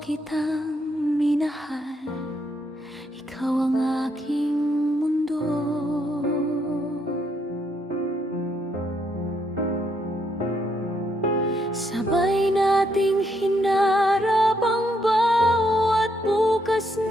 kitang minahal, ikaw ang aking mundo. Sabay nating hinarap ang bawat bukas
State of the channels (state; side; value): normal; both; correlation 0.75